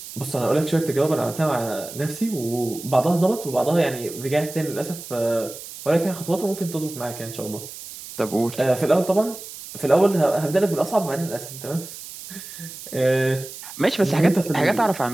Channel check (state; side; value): noise; right; hiss, 13 dB below the sound